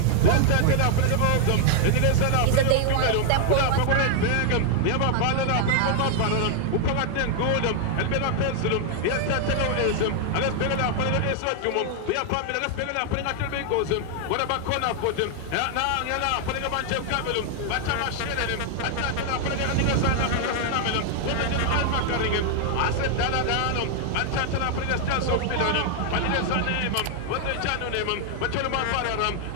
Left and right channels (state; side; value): different; both; correlation 0.00